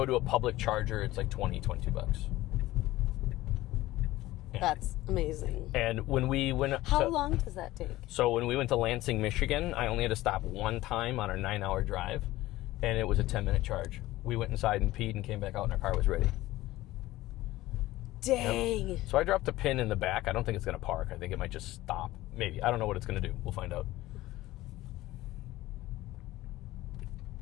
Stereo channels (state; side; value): quieter; right; 17.0 dB